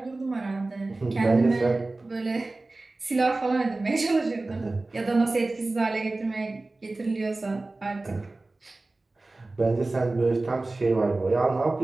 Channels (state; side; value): quieter; left; 3.1 dB